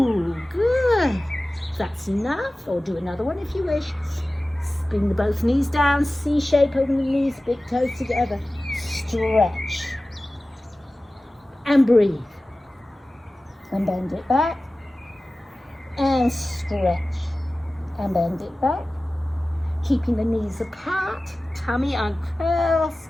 good. That's enough, or do another one if you wish. Bring the both knees down, C shape, open the knees, big toes together. Stretch. And breathe. And bend it back. And stretch. And bend it back. Keeping the knees apart, tummy uncurls.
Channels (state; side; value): normal; both; correlation 0.96